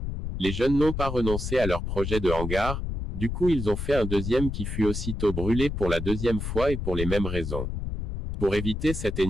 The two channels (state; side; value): noise; left; rumble, 4 dB below the sound